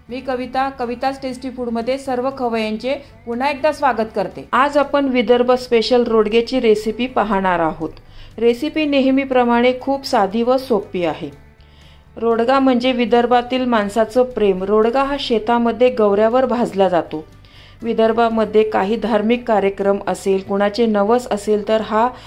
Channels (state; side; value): identical; both; correlation 1.00